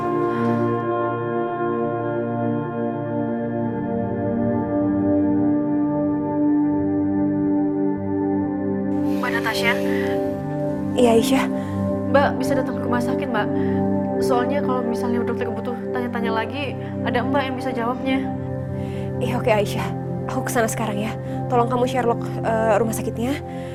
Mbak Natasha, Iya Aisyah, Mbak bisa datang ke rumah sakit Mbak. Soalnya kalau misalnya dokter butuh tanya-tanya lagi, ada Mbak yang bisa jawabnya. iya oke Aisyah, aku kesana sekarang ya. Tolong kamu Sherlock rumah sakitnya.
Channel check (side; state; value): both; identical; correlation 1.00